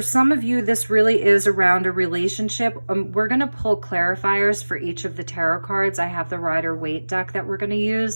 some of you, this really is around a relationship. We're going to pull clarifiers for each of the tarot cards. I have the Rider-Waite deck that we're going to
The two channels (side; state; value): both; inverted; correlation -1.00